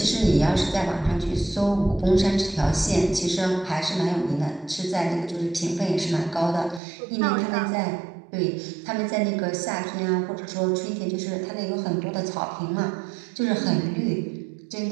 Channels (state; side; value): drops out; left; at 6.8 s